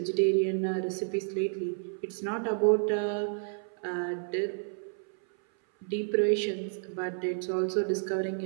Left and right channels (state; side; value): silent; left; 57 dB below the other